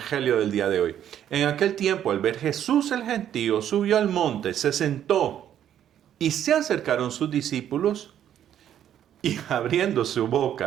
del día de hoy. En aquel tiempo, al ver Jesús el gentío, subió al monte, se sentó y se acercaron sus discípulos y abriendo su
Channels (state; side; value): quieter; left; 10.4 dB